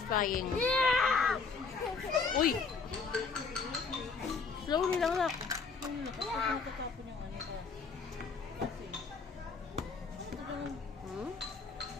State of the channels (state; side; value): quieter; right; 4.8 dB